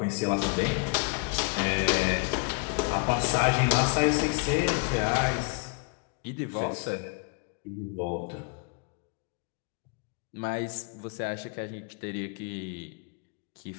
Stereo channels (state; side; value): quieter; right; 35.7 dB